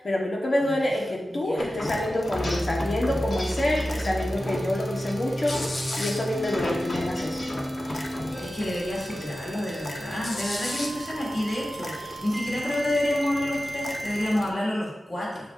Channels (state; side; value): normal; both; correlation 0.94